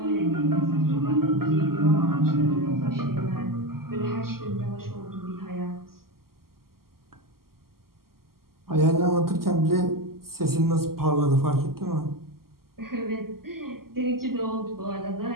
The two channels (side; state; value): left; late; 0.92 ms